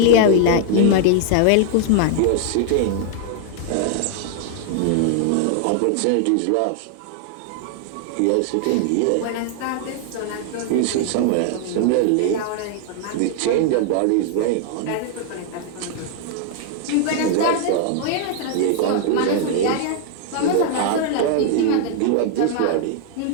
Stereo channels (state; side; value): different; both; correlation 0.00